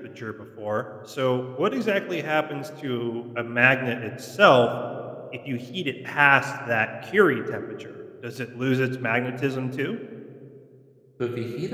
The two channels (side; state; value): both; identical; correlation 1.00